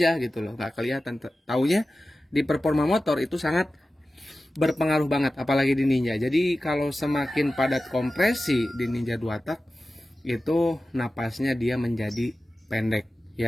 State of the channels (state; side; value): normal; both; correlation 0.94